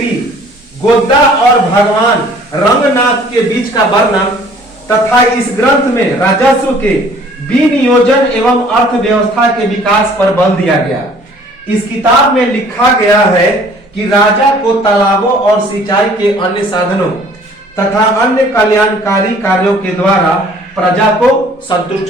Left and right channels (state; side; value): normal; both; correlation 0.54